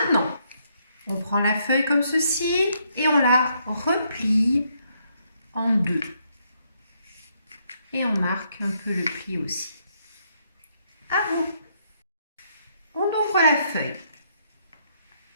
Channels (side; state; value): both; inverted; correlation -0.73